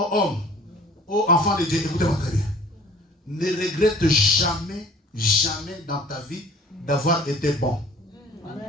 aux enfants de Dieu, écoutez-moi très bien. Ne regrette jamais, jamais dans ta vie d'avoir été bon.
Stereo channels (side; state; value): both; normal; correlation 0.49